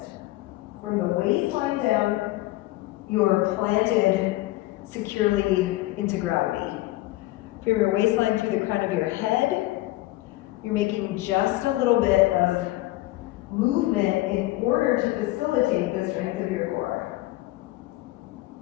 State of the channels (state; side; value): quieter; right; 18.1 dB